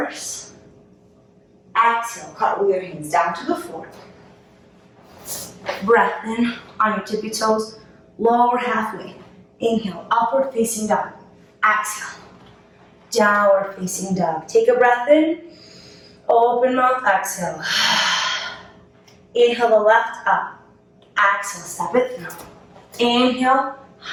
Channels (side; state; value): both; identical; correlation 1.00